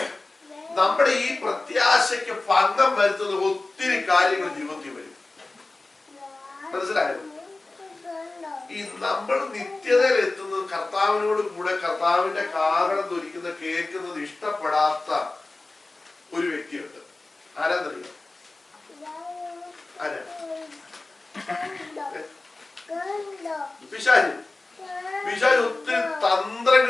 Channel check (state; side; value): quieter; right; 3.1 dB